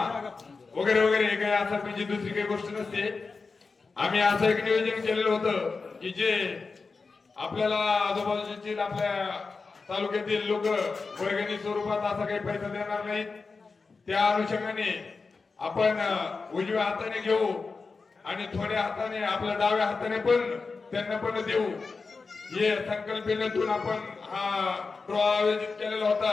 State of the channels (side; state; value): right; quieter; 4.4 dB